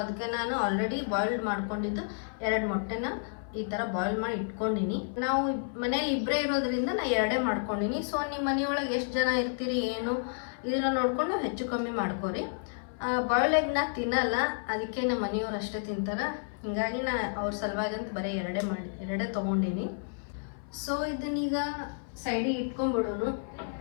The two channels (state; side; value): silent; right; 57 dB below the other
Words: ಅದಕ್ಕೆ ನಾನು ಆಲ್ರೆಡಿ ಬಾಯ್ಲ್ಡ್ ಮಾಡ್ಕೊಂಡಿದ್ದು 2 ಮೊಟ್ಟೆನ ಈ ಥರ ಬಾಯ್ಲ್ ಮಾಡಿ ಇಟ್ಕೊಂಡಿನಿ. ನಾವು ಮನೇಲಿ ಇಬ್ಬರೇ ಇರೋದ್ರಿಂದ ನಾನು 2 ಮಾಡ್ಕೊಂಡಿನಿ. ಸೊ ನಿಮ್ಮ ಮನೆಯೊಳಗೆ ಎಷ್ಟು ಜನ ಇರ್ತೀರಿ ಏನು ಇದನ್ನು ನೋಡ್ಕೊಂಡು ಹೆಚ್ಚು ಕಮ್ಮಿ ಮಾಡ್ಕೊರಿ. ಬಾಯ್ಲ್ ಎಗ್ನ ತಿನ್ನಲ್ಲ, ಅದಕ್ಕೆ ನಮ್ಮ ಮನೆಯವ್ರು ಅಷ್ಟೇ ತಿಂತಾರೆ. ಹಿಂಗಾಗಿ ನಾನು ಅವ್ರ ಸಲುವಾಗಿ ಅಂತ ಬರೀ 2 ತೊಗೊಂಡಿನಿ. ಸೊ ಇದನ್ನೀಗ ಸೈಡಿಗೆ ಇಟ್ಕೊಂಡ್ಬಿಡೋನು.